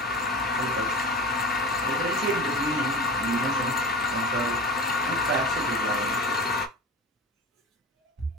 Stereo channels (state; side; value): normal; both; correlation 0.31